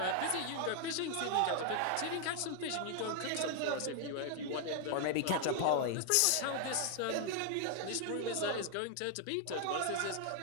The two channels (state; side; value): different; both; correlation 0.00